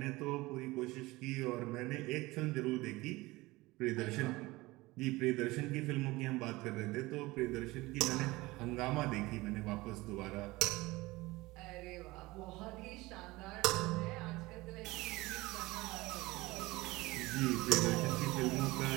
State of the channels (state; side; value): quieter; left; 20.7 dB